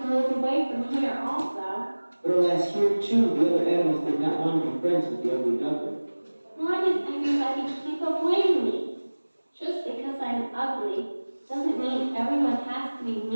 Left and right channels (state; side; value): inverted; both; correlation -1.00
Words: move away from here also. But alas, here too, the other animals did not want to be friends with the ugly duckling. Why does everybody keep avoiding me? Just because I'm ugly doesn't mean everyone has to be